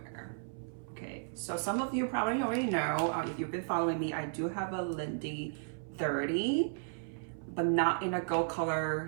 Okay, so some of you probably already know, if you've been following me, I do have a Lindy 30, but not in a gold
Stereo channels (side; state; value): left; silent; 55 dB below the other